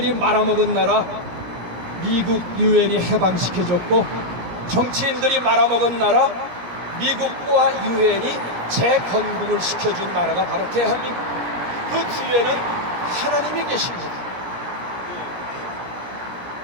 말아먹은 나라 미국 유엔이 해방시켜줬고 정치인들이 말아먹은 나라 미국과 유엔이 재건국을 시켜준 나라가 바로 대한민국. 그 뒤에는 하나님이 계십니다.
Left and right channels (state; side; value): late; left; 17 ms